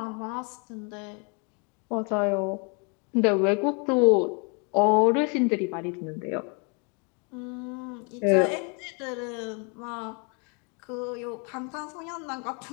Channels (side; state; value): right; quieter; 34.6 dB